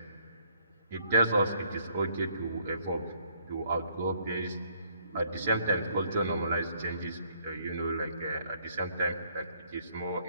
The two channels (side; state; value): both; inverted; correlation -0.65